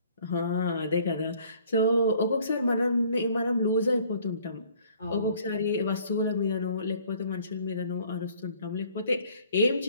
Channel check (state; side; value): inverted; both; correlation -0.57